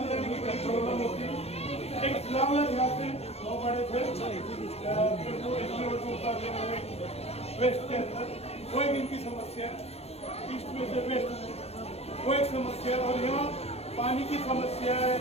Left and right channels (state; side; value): late; right; 0.30 ms